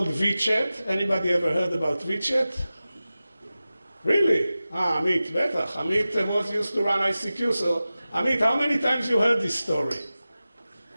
VChat. Anybody ever heard about VChat? Really? Amit, betach. Amit was used to run ICQ. So, Amit, how many times you heard this story?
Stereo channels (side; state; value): both; inverted; correlation -0.96